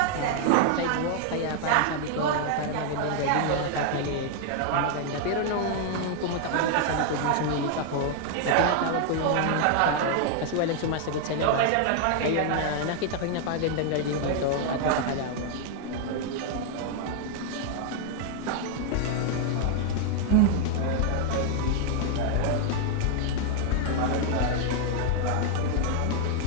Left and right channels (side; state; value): both; different; correlation 0.00